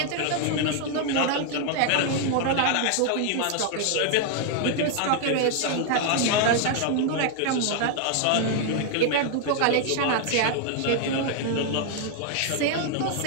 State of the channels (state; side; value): different; both; correlation 0.00